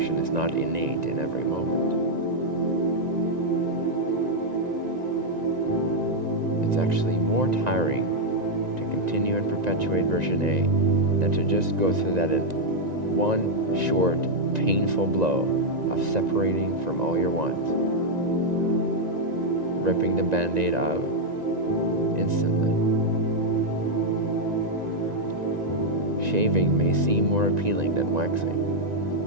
is not innate in every moment. It's actually more tiring to continue and perpetuate version A than to just go through that in one short, painful blow of separating from all your wants, ripping the Band-Aid out instantly. Shaving may seem more appealing than waxing,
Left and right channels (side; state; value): left; late; 1.9 ms